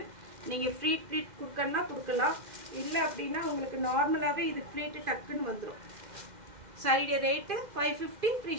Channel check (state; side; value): late; left; 2.1 ms